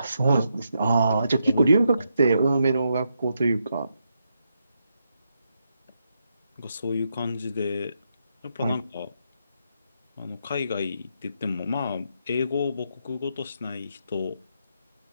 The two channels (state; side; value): inverted; both; correlation -0.81